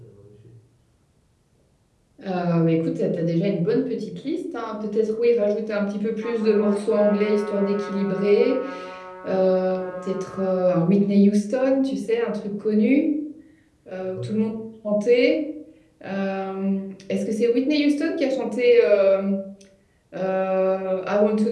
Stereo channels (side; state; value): both; identical; correlation 1.00